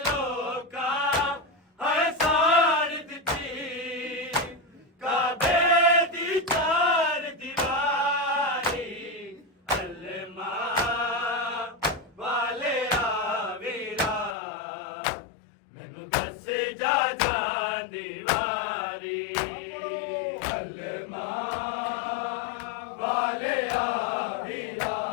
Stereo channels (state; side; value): drops out; right; at 14.4 s